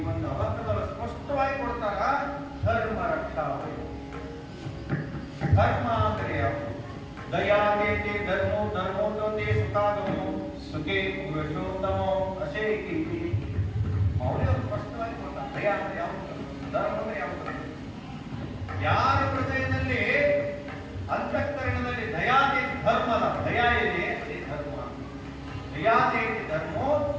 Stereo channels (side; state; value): both; identical; correlation 1.00